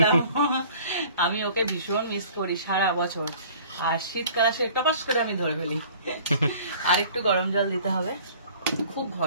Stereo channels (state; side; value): inverted; both; correlation -0.49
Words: আমি ওকে ভীষণ মিস করি সারা বছর, আর শীতকাল আসে টপাস করে আমি ধরে ফেলি। আর একটু গরম জল দিতে হবে, খুব